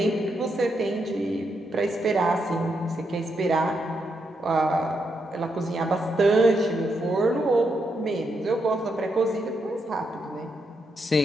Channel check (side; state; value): both; normal; correlation 0.81